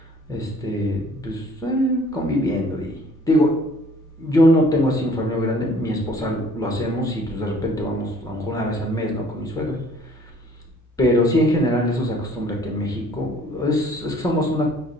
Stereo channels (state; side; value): normal; both; correlation 0.55